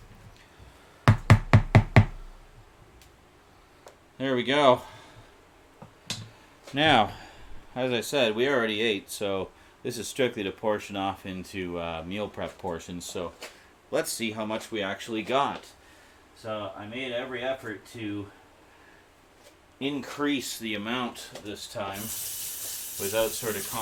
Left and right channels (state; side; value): identical; both; correlation 1.00